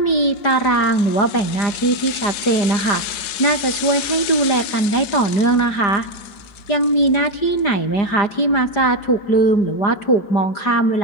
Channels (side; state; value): right; late; 4.9 ms